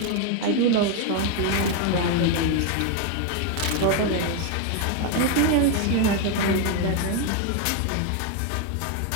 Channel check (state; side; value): different; both; correlation 0.01